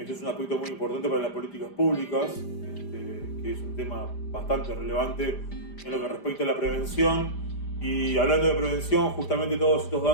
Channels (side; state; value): right; late; 5.0 ms